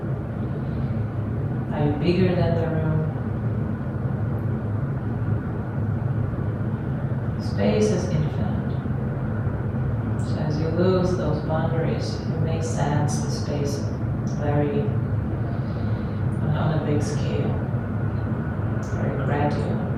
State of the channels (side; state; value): both; identical; correlation 1.00